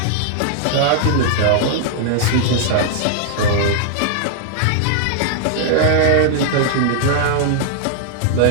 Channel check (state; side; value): different; both; correlation -0.01